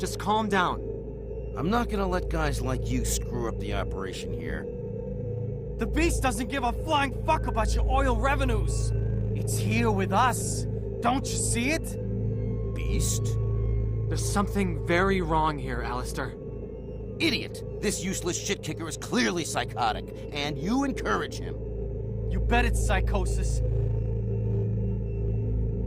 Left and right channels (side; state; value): both; identical; correlation 1.00